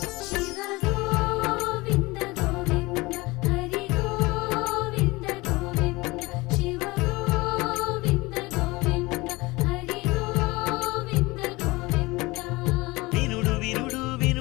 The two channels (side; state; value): right; quieter; 22.4 dB